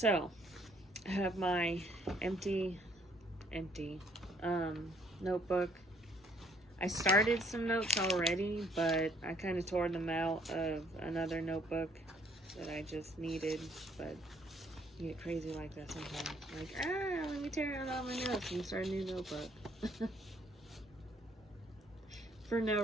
I have my empty notebook. I started some notes already, but I kind of tore them out of another notebook that I just needed, but you get crazy like that sometimes. Like, let me tear out all my notes and start a new notebook. For no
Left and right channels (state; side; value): normal; both; correlation 0.63